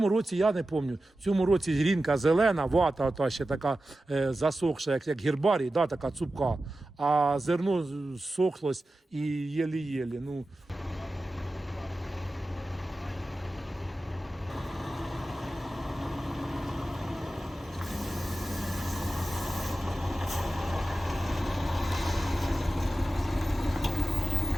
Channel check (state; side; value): normal; both; correlation 0.94